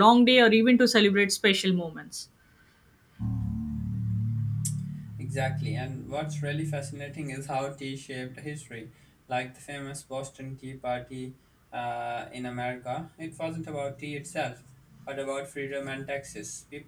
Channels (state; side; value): identical; both; correlation 1.00